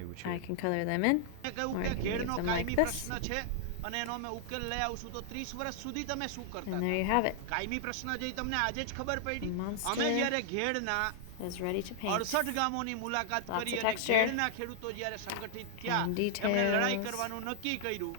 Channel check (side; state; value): both; different; correlation -0.01